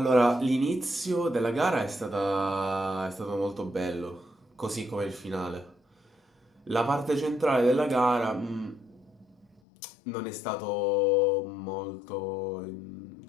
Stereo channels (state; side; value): drops out; right; at 9.6 s